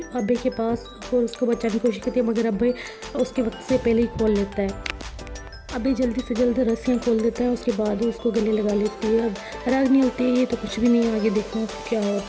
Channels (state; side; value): identical; both; correlation 1.00